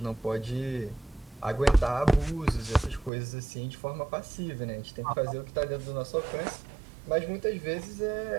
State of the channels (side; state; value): left; drops out; at 3.1 s